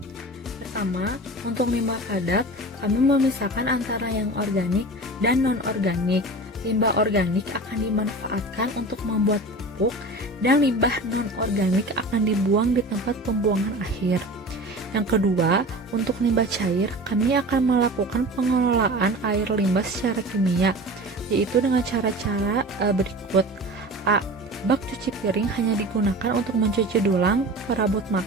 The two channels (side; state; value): both; normal; correlation 0.35